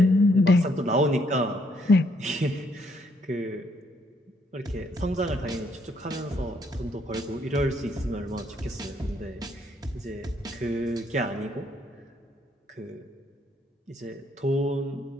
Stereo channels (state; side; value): normal; both; correlation 0.70